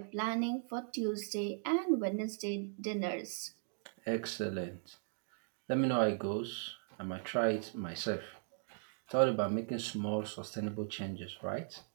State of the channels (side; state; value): left; silent; digital silence